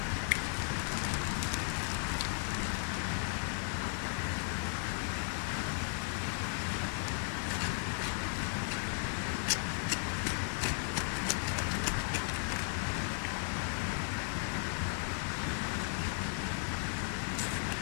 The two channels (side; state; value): right; silent; 54 dB below the other